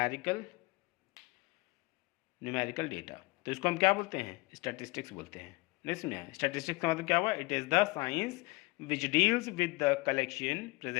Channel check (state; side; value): quieter; right; 24.9 dB